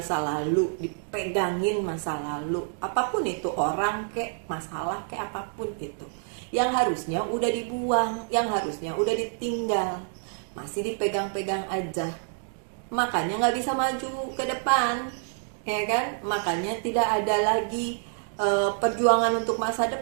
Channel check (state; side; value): silent; left; 60 dB below the other